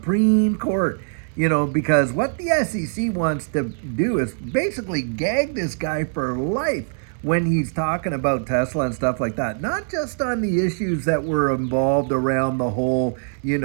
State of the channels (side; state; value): left; silent; digital silence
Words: Court, because what the SEC wants to do is basically gag this guy for life when he's talking about Tesla and stuff like that. Not just on the issues that were involved around the whole,